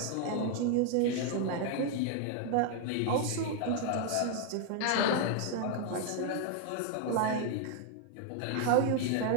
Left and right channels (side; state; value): both; different; correlation 0.00